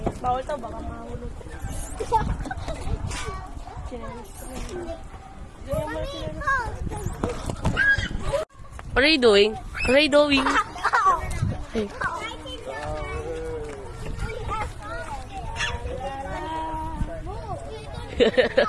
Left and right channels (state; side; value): identical; both; correlation 1.00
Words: Bawal to, baka mahulog. What are you doing? What are you doing? Hey.